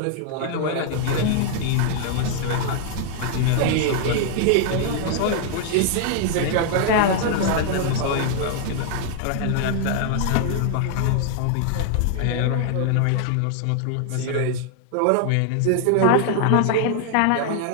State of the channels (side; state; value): both; different; correlation 0.00